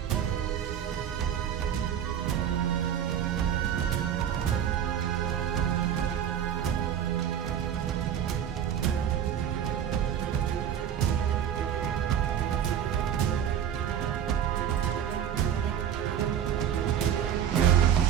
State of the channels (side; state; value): left; quieter; 9.3 dB